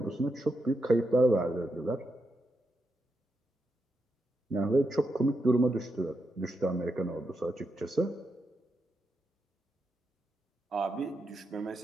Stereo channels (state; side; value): normal; both; correlation 0.84